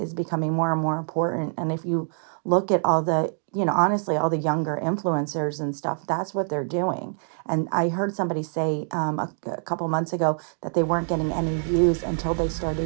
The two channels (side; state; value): left; silent; digital silence